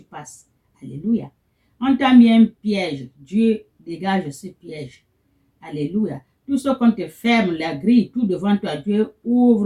passes. Alléluia. On t'a mis un piège. Dieu dégage ce piège. Alléluia. Tout ce qu'on te ferme, la grille, tout devant toi, Dieu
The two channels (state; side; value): identical; both; correlation 1.00